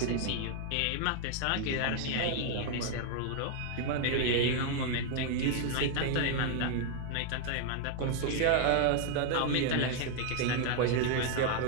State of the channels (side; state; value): both; different; correlation 0.00